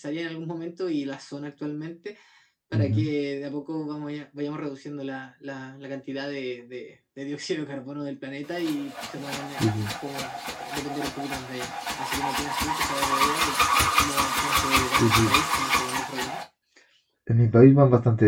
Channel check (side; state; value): both; identical; correlation 1.00